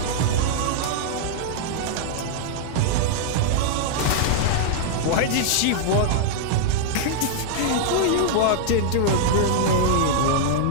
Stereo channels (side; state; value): both; different; correlation -0.01